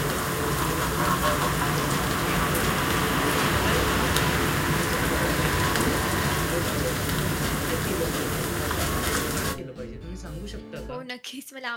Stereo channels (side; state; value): both; identical; correlation 1.00